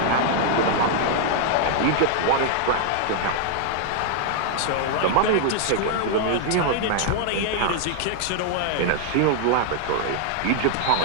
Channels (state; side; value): different; both; correlation 0.00